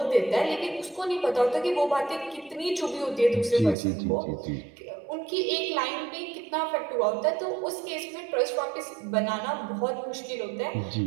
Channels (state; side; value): drops out; left; at 3.8 s